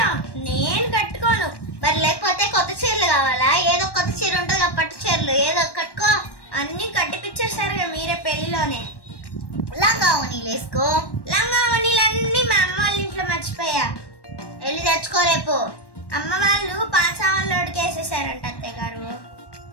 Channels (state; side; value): late; right; 1.1 ms